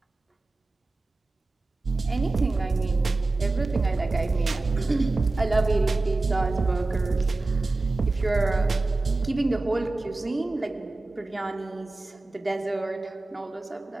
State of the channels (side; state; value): left; quieter; 3.2 dB